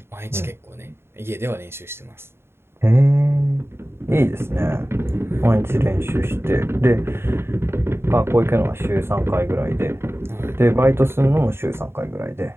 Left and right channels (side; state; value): left; late; 0.12 ms